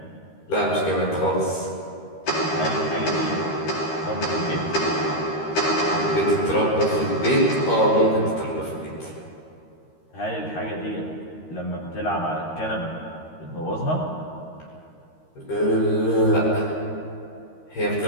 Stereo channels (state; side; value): late; right; 13 ms